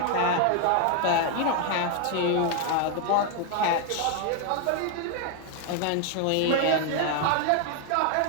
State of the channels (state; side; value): different; both; correlation 0.00